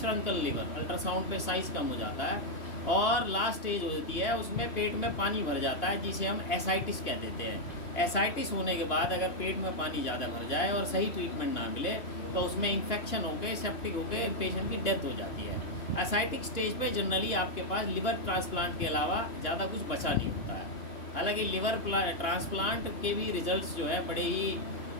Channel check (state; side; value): late; right; 2.9 ms